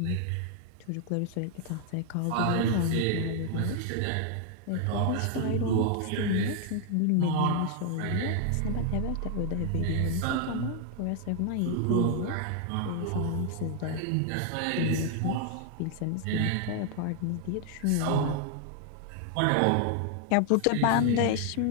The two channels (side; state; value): both; different; correlation 0.00